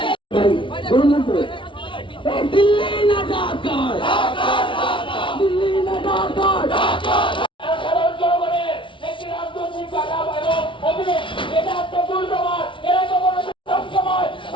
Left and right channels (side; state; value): right; late; 0.25 ms